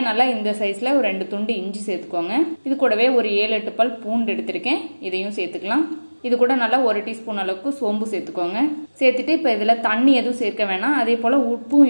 நல்லா இந்த சைஸ்ல ஒரு 2 துண்டு இஞ்சி சேர்த்துக்கோங்க. இது கூடவே ஒரு 7-8 பல் பூண்டு எடுத்திருக்கேன். இதையும் சேர்த்துக்கலாம். இது கூட நல்லா 1 டீஸ்பூன் அளவுக்கு சோம்பு சேர்த்துக்கோங்க. சேர்த்துட்டு இப்ப இதுல தண்ணி எதுவும் சேர்க்க வேணாம். அதே போல உப்பும்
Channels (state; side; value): inverted; both; correlation -1.00